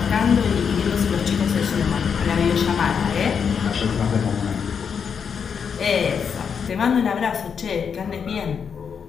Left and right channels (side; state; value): right; quieter; 6.7 dB